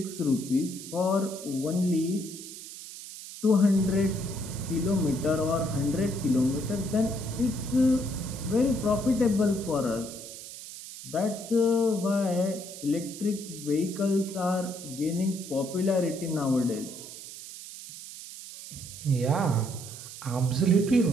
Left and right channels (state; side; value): noise; right; hiss, 12 dB below the sound